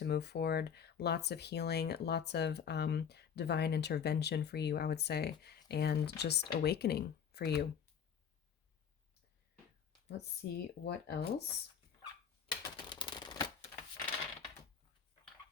move forward, lots of healing, lots of divine intervention for you, I would say, and just awakening for you. Let's see what else.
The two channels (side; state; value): right; quieter; 7.7 dB